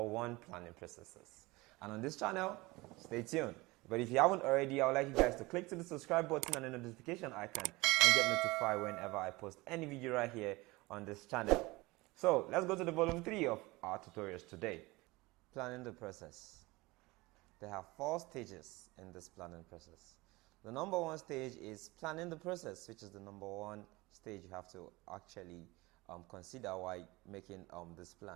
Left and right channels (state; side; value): quieter; left; 22.2 dB